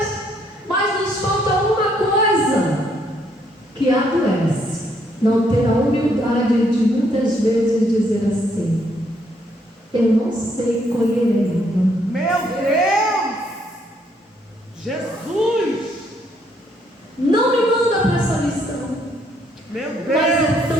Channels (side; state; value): both; normal; correlation 0.70